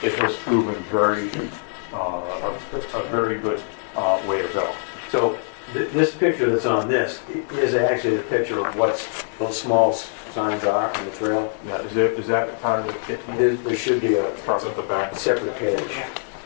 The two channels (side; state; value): right; silent; digital silence